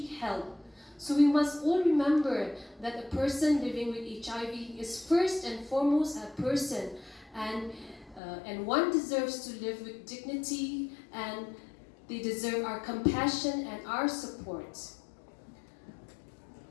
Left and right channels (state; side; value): drops out; right; at 8.2 s